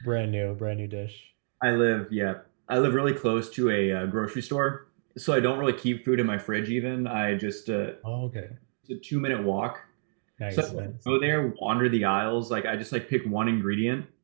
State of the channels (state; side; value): silent; left; digital silence